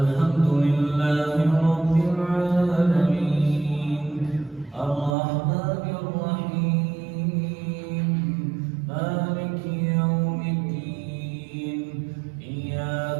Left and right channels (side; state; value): left; drops out; at 5.2 s